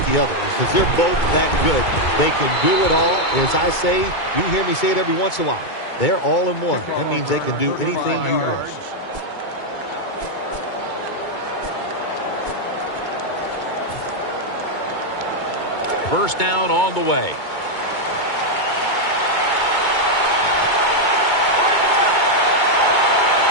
the other because they're both that good. They can do it all. As I say, you hear me say it every once in a while. They're all in one. That means they can do anything you want. First down on the way.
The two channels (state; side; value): late; right; 2.2 ms